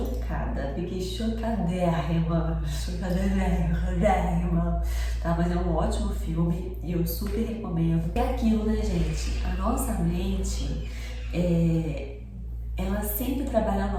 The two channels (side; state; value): both; identical; correlation 1.00